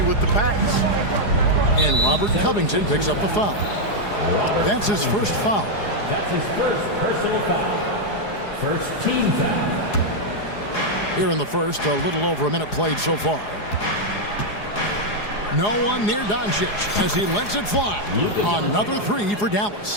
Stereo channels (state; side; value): late; right; 4.8 ms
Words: with the pass. And Robert Covington picks up the foul. That's his first foul. That's his first personal foul. First team foul. Here in the first, a little over a minute played so far. No one near Doncic as he lets it fly. Another 3 for